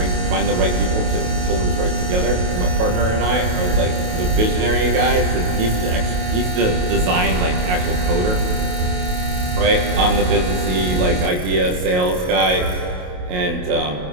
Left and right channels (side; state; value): left; late; 28 ms